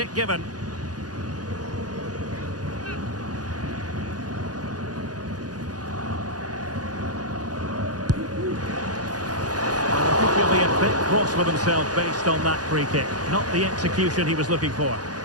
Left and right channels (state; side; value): late; left; 0.68 ms